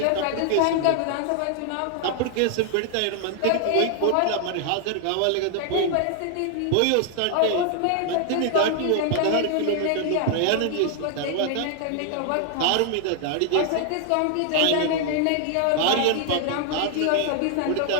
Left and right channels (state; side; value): different; both; correlation 0.00